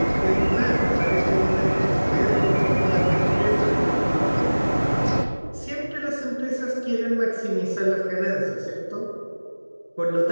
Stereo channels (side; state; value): both; inverted; correlation -1.00